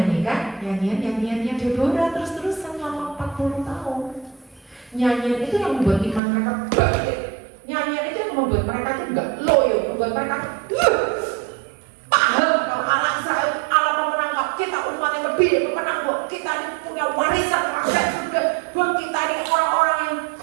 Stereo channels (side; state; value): left; drops out; at 6.2 s